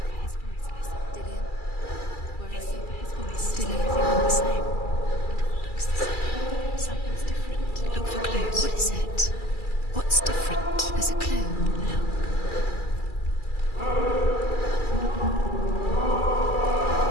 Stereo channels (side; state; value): right; late; 2.3 ms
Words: Something's different. Look for clues. What is it? What's different? There's a clue.